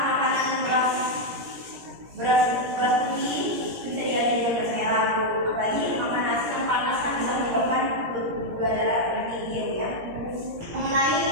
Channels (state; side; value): late; left; 17 ms